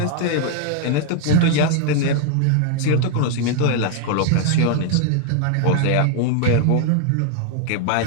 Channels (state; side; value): different; both; correlation 0.00